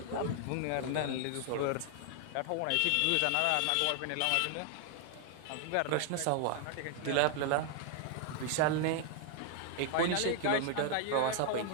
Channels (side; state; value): both; different; correlation 0.00